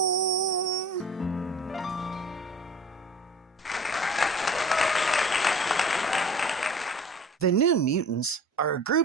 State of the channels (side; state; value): both; normal; correlation 0.43